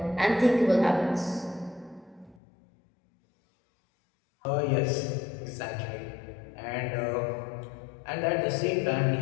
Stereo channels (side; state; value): right; drops out; at 2.4 s